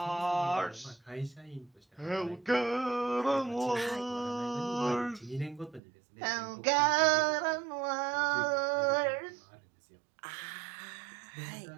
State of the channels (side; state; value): left; drops out; at 5.8 s